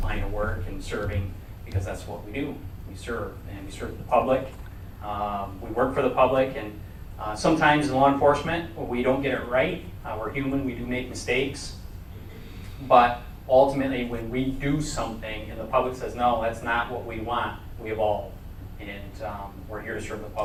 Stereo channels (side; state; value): both; identical; correlation 1.00